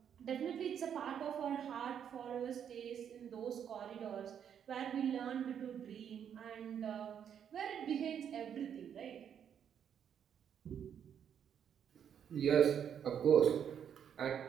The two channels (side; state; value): left; quieter; 8.5 dB